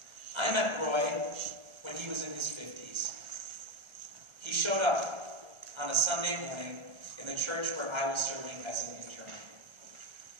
I met Roy when he was in his 50s. He showed up on a Sunday morning in the church where I was serving as an intern.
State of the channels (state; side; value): late; left; 1.3 ms